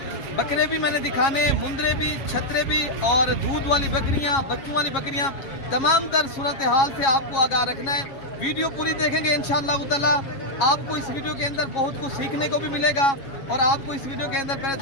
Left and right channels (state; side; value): late; right; 7.4 ms